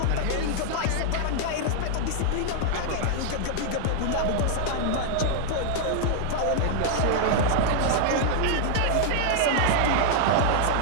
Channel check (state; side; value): different; both; correlation -0.01